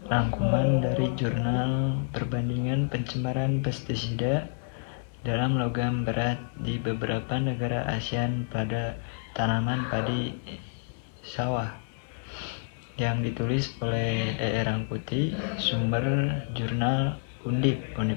rangkuman dari jurnal perbandingan pencemaran pestisida dalam logam berat di beberapa negara ASEAN pada tanaman padi sawah yang ditulis oleh E. Rangkuti, sumber jurnal Undip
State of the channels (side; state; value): right; silent; digital silence